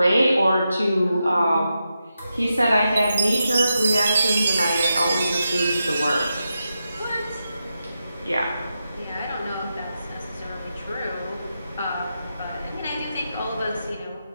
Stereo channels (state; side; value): inverted; both; correlation -0.88